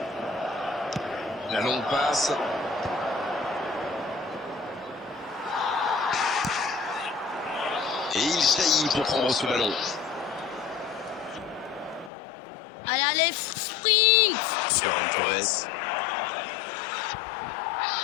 La longue passe. Et il jaillit pour prendre ce ballon. Allez, allez, sprint. Ferran Torres.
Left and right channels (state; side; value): drops out; right; at 12.1 s